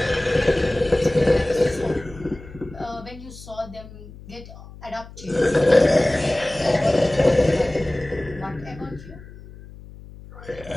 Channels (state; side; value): noise; left; hum, 18 dB below the sound